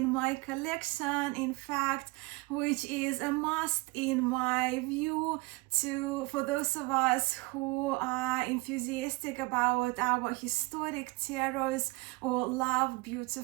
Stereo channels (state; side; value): quieter; left; 24.5 dB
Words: my collection, in fact, which is a must in my view for those of us who are enthusiastic about our historic tarots or love